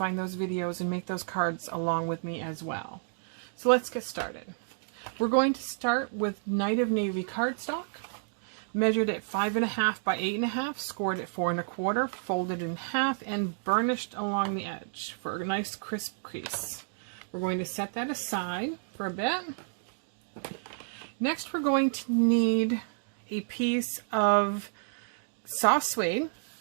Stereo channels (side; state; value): left; silent; digital silence